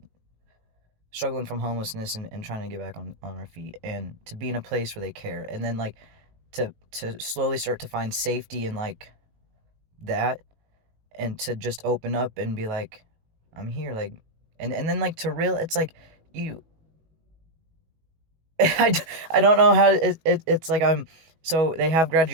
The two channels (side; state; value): left; late; 19 ms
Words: struggling from homelessness and trying to get back on our feet and to be in a place where they care and then like to slowly start to find safety in like that and to just open up and be like I'm here like and then like to real it's like you I, I don't know how it's like I'm so they have